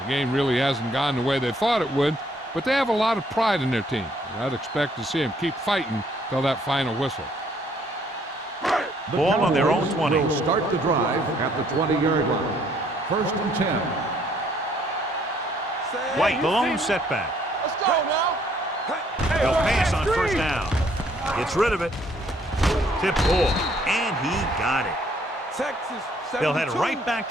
The game really hasn't gone the way they thought it would, but they have a lot of pride in their team. And I'd expect to see them keep fighting till that final whistle. The Ball on their own Cowboys 20. will start the drive at the 20-yard line. 1st and 10. White, the lone setback. Let's go now. He'll pass on 1st down. Gets rid of it. Tip ball. And he got it. Texas, 72. They'll head right back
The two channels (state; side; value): normal; both; correlation 0.65